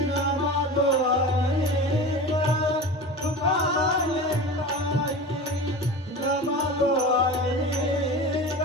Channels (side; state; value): both; normal; correlation 0.32